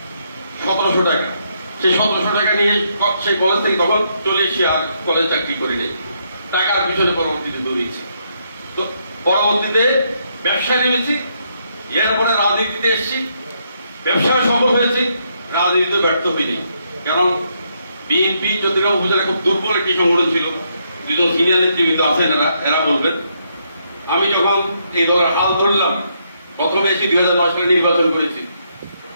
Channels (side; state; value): both; inverted; correlation -0.76